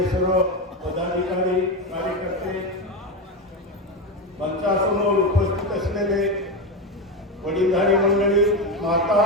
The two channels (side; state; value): both; normal; correlation 0.14